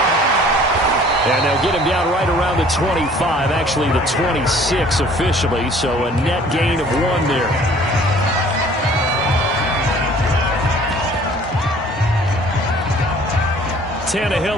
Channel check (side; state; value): both; normal; correlation 0.53